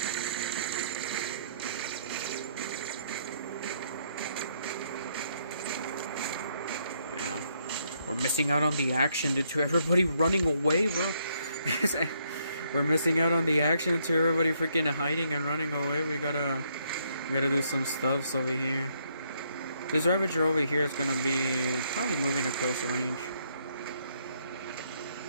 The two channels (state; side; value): inverted; both; correlation -0.72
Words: Yeah. We're missing out on the action due to everybody running away, bro. We're missing out on the action to everybody freaking hiding and running away. We gotta do some stuffs over here. This Ravager over here is gonna be probably moving to close range.